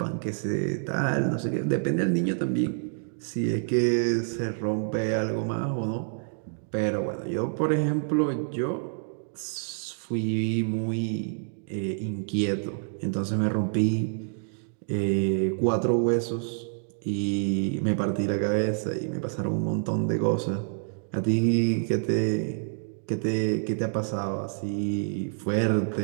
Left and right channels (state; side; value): silent; left; digital silence